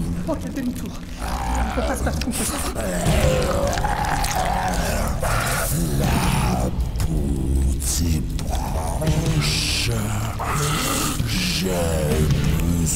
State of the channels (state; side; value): identical; both; correlation 1.00